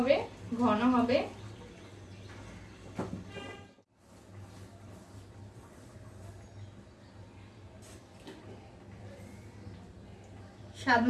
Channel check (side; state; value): both; identical; correlation 1.00